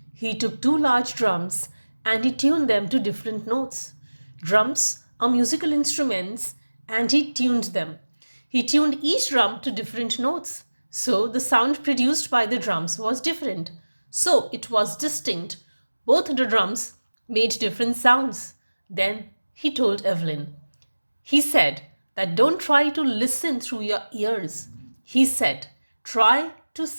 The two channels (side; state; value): both; inverted; correlation -1.00